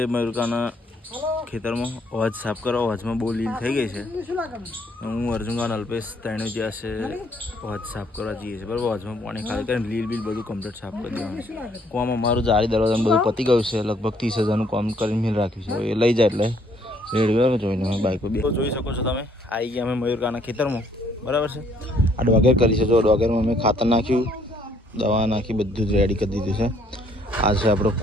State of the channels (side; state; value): both; normal; correlation 0.65